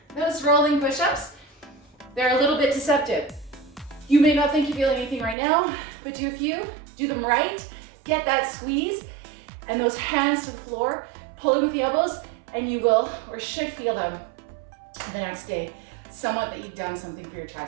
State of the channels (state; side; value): drops out; left; at 5.4 s